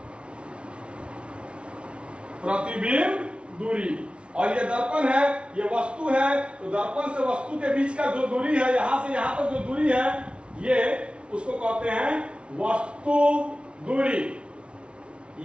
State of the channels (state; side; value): late; left; 0.059 ms